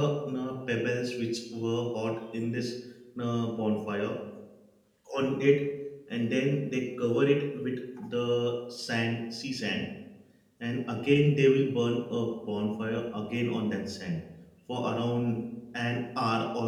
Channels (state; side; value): identical; both; correlation 1.00